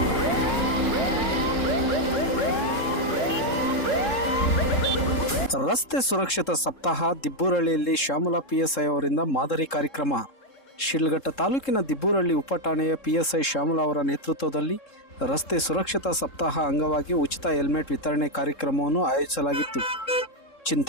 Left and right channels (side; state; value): right; late; 3.7 ms